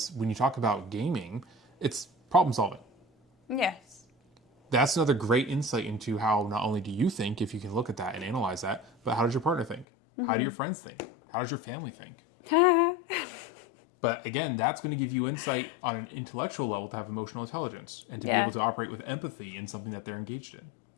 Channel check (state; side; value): drops out; right; at 9.9 s